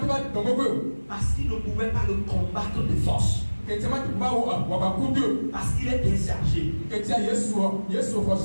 Parce qu'il ne pouvait pas le combattre de force. Parce qu'il est bien chargé.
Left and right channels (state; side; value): inverted; both; correlation -1.00